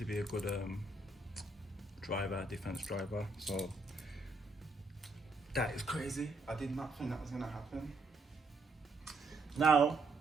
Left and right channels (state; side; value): quieter; left; 3.1 dB